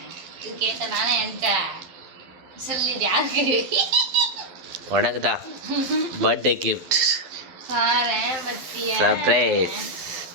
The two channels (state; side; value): late; left; 12 ms